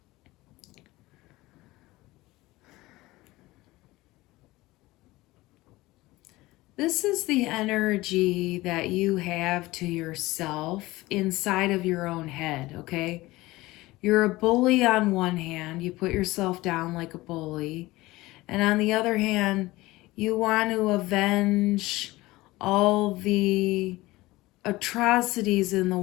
This is the energy that you have to yourself inside of your own head, okay? You're a bully on one hand. You put yourself down like a bully. And on the other hand, you want to avenge all the atrocities in the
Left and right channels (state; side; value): quieter; right; 19.4 dB